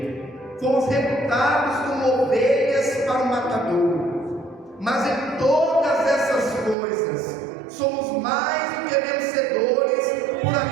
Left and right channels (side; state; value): left; drops out; at 6.8 s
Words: fomos reputados como ovelhas para o matadouro. Mas em todas essas coisas somos mais do que vencedores por